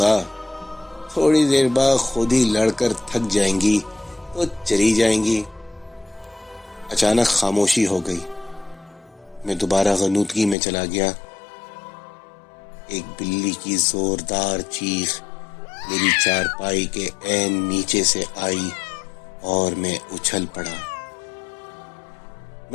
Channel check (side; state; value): right; drops out; at 10.6 s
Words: تھوڑی دیر بعد خود ہی لڑ کر تھک جائیں گی تو چلی جائیں گی۔ اچانک خاموشی ہو گئی۔ میں دوبارہ غنودگی میں چلا گیا۔ ایک بلی کی زوردار چیخ میری چارپائی کے عین نیچے سے آئی اور میں اچھل پڑا۔